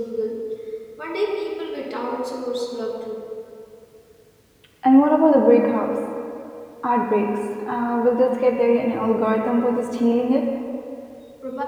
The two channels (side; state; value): both; identical; correlation 1.00